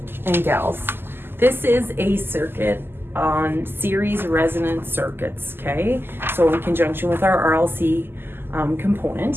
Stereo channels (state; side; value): late; left; 0.11 ms